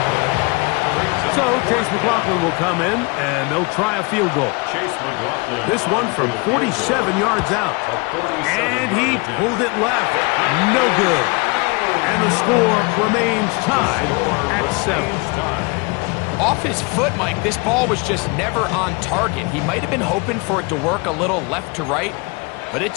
So Chase McLaughlin will come in, and they'll try a field goal. This one from 47 yards out. And he pulled it left. No good. And the score remains tied at 7. Off his foot, Mike, this ball was just never on target. He might have been hoping for it to work a little left to right, but it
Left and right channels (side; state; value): right; quieter; 28.8 dB